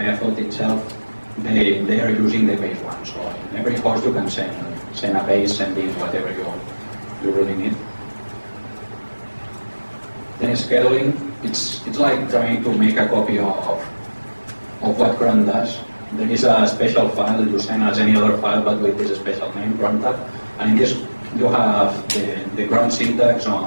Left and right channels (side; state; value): both; inverted; correlation -1.00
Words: itself, they are using the base one. So in every host you can send a base, sending whatever you really need. Then scheduling, it's like trying to make a copy of what cron does. There is a special file you send as any other file, but with this special name, cron tag. And in this, you have the cron syntax